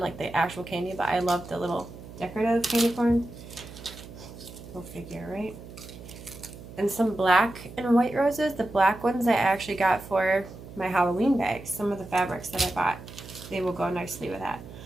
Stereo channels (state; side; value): noise; right; hum, 15 dB below the sound